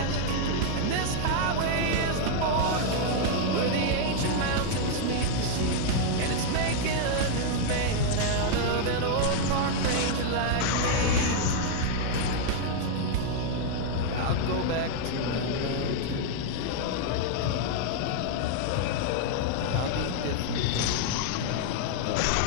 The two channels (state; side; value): different; both; correlation 0.00